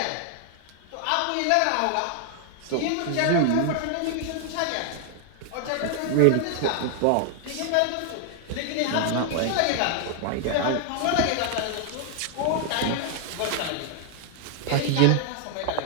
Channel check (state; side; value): different; both; correlation 0.00